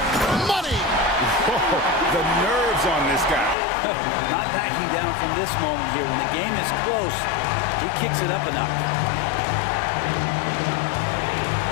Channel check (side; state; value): right; drops out; at 3.6 s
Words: Money! Whoa, the nerves on this guy. Not backing down from this moment here. When the game is close, he kicks it up a notch.